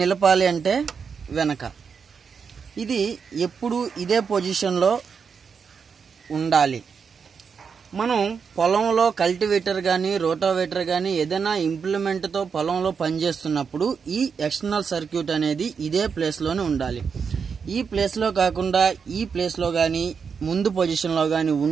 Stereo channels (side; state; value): left; quieter; 6.1 dB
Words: అంటే వెనక. ఇది ఎప్పుడు ఇదే పొజిషన్లో ఉండాలి. మనం పొలంలో కల్టివేటర్ కానీ రోటావేటర్ కానీ ఏదైనా ఇంప్లిమెంట్తో పొలంలో పనిచేస్తున్నప్పుడు ఈ ఎక్స్టర్నల్ సర్క్యూట్ అనేది ఇదే ప్లేస్లోనే ఉండాలి. ఈ ప్లేస్లో కాకుండా ఈ ప్లేస్లో కానీ ముందు పొజిషన్లో కానీ